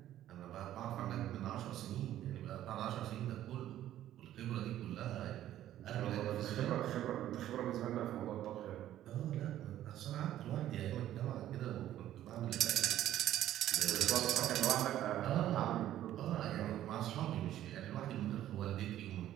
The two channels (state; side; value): quieter; left; 12.6 dB